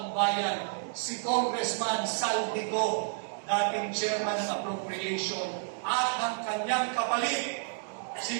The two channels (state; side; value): silent; left; digital silence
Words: bayan si Congressman Saldico, dating chairman ng appropriation, at ang kanyang kapalit,